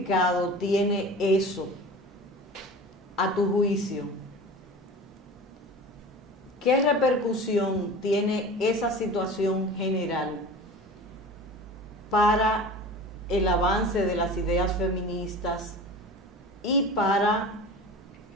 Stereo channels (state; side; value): normal; both; correlation 0.36